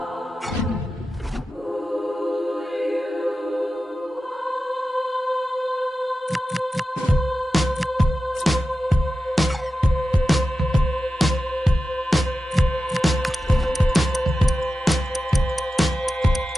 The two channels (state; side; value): normal; both; correlation 0.92